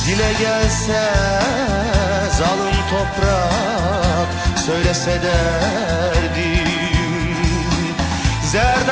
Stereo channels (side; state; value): both; identical; correlation 1.00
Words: Dile gelse zalim toprak, söylese derdim.